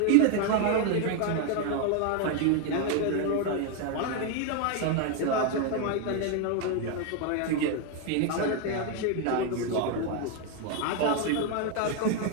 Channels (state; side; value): different; both; correlation 0.01